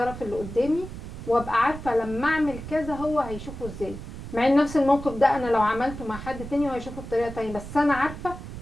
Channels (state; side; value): noise; right; rumble, 11 dB below the sound